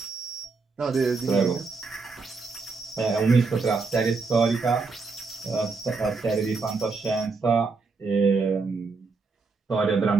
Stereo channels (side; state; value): left; quieter; 4.3 dB